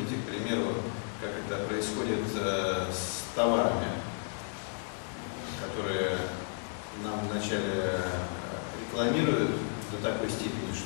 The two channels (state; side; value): silent; right; 56 dB below the other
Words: к примеру, как это происходит с товарами, которые нам вначале рекламируют до такой степени,